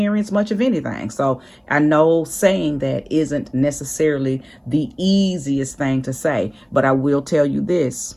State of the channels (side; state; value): both; identical; correlation 1.00